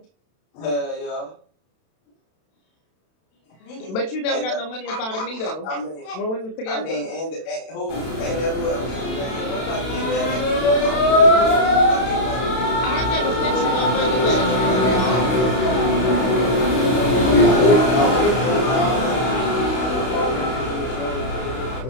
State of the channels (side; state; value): right; late; 32 ms